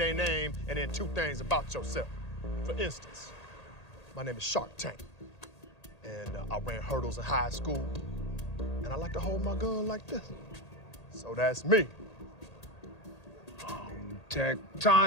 name and then two things about yourself. For instance, my name is Shark Tank, and I ran hurdles in high school, and I like to hold my gun like this. So that's me.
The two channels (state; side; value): late; right; 1.8 ms